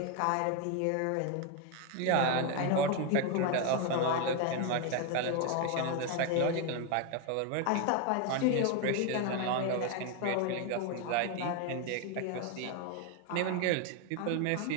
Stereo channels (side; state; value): both; different; correlation 0.01